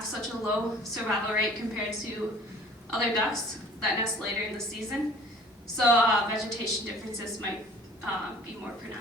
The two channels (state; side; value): normal; both; correlation 0.49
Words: such a low survival rate compared to other ducks that nest later in the season. So vegetation differences might be more